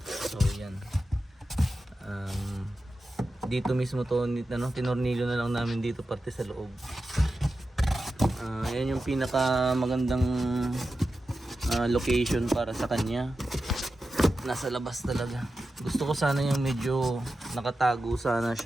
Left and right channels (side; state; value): both; normal; correlation 0.92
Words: So, yan. Dito mismo to ano, tinornilyo na lang namin dito parte sa loob. Yan yung pinaka magandang location para sa kanya. Nasa labas talaga. Gusto ko sana yung medyo nakatago sana